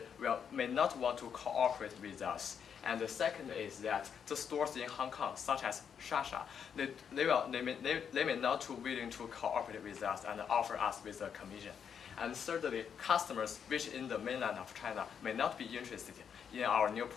may not want to cooperate with us. And the second is that the stores in Hong Kong, such as Shasha, they may not be willing to cooperate with us and offer us with a commission. And thirdly, customers which in the mainland of China may not be interested in our new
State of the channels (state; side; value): quieter; right; 7.5 dB